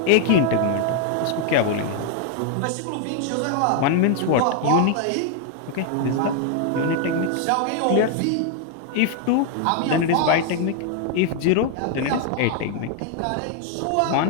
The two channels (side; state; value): both; different; correlation 0.00